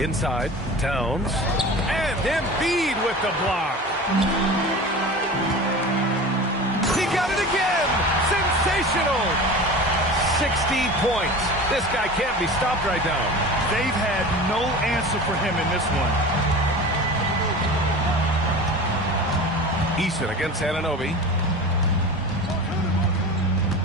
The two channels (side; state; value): both; normal; correlation 0.34